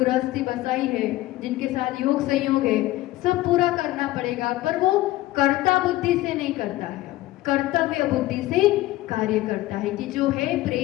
बसाई है, जिनके साथ योग संयोग है, सब पूरा करना पड़ेगा, पर वो कर्ता बुद्धि से नहीं करता है, कर्तव्य बुद्धि से कार्य करता है कि जो है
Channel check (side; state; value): right; quieter; 16.8 dB